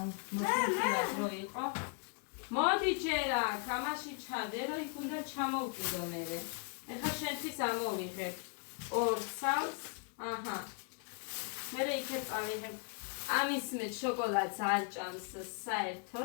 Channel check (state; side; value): quieter; right; 37.3 dB